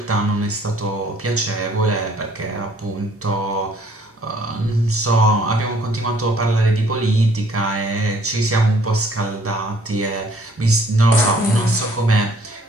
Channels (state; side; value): normal; both; correlation 0.61